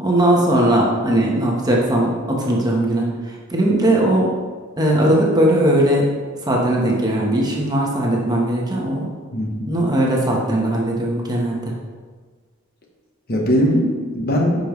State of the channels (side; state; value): both; normal; correlation 0.57